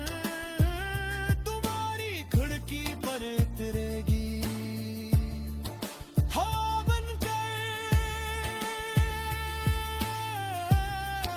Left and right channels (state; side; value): identical; both; correlation 1.00